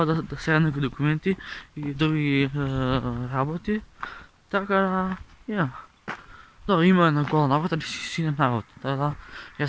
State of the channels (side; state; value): both; identical; correlation 1.00